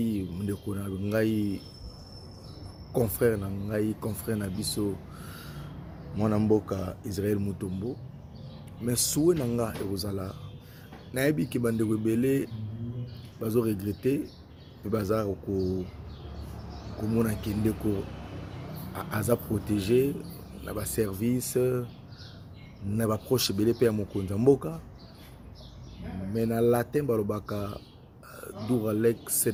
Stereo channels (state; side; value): identical; both; correlation 1.00